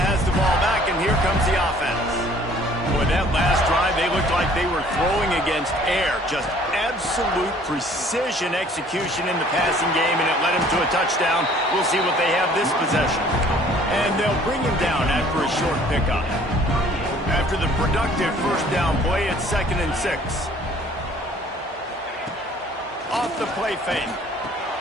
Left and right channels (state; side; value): normal; both; correlation 0.55